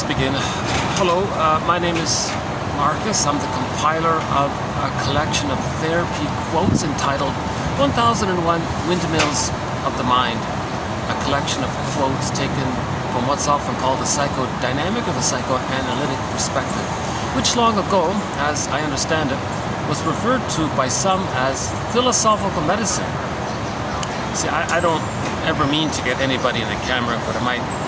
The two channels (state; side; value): identical; both; correlation 1.00